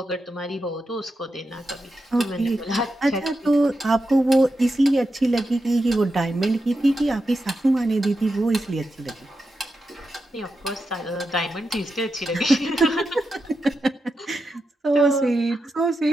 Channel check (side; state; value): both; normal; correlation 0.88